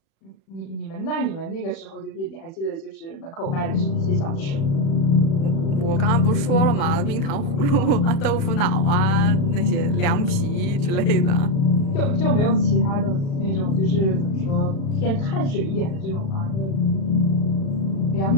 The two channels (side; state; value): right; late; 36 ms